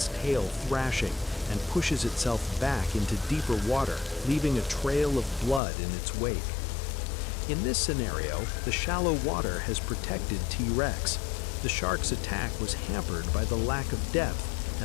tail thrashing, and pushes itself back into deeper water, leaving a trail of blood in its wake. In this scenario, the shallow water has protected T-Rex. The shark's attack was hampered by the lack of depth,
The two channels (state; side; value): drops out; right; at 5.6 s